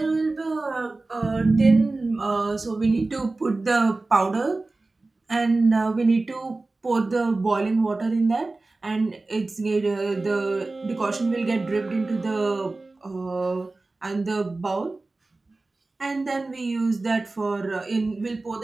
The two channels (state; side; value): quieter; left; 3.3 dB